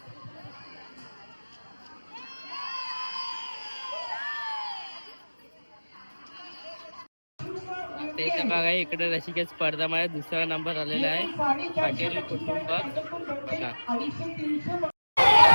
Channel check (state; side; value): inverted; both; correlation -1.00